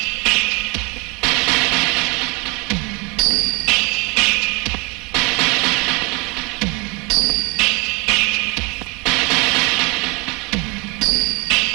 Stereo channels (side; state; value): left; quieter; 28.3 dB